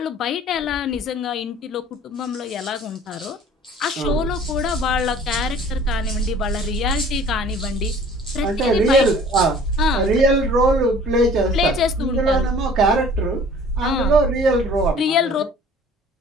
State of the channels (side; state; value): both; normal; correlation 0.49